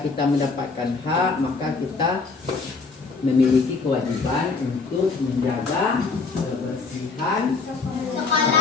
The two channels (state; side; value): quieter; right; 4.4 dB